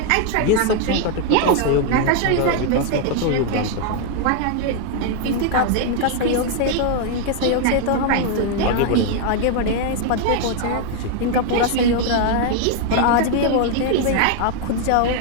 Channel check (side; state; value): both; different; correlation 0.00